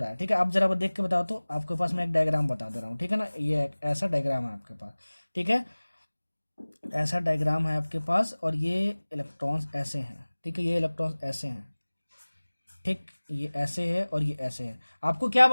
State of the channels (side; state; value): both; inverted; correlation -1.00